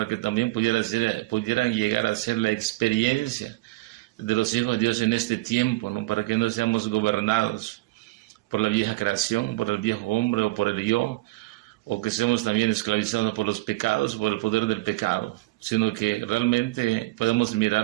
que también pudieran llegar a ser la experiencia de los hijos de Dios en este tiempo, ¿no? Para que no seamos gobernados por la vieja creación, por el viejo hombre o por el yo, o que seamos también esclavizados por los pecados, por el poder del pecado, sino que realmente podemos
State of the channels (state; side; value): quieter; left; 20.3 dB